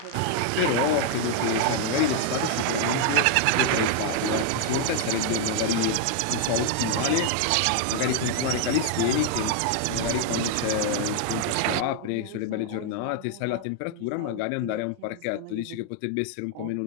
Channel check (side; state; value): both; different; correlation 0.00